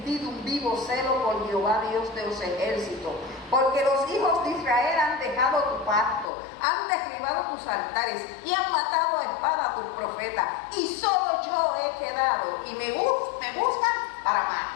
un vivo celo por Jehová, Dios de los ejércitos, porque los hijos de Israel han dejado tu pacto, han derribado tus altares y han matado a espada a tus profetas, y solo yo he quedado, y me buscan para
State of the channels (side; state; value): right; drops out; at 6.3 s